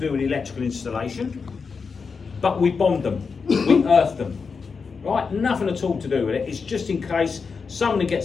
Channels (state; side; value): quieter; right; 5.2 dB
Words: with electrical installation, but we bond them, we earth them, right? Nothing at all to do with it. It's just in case somebody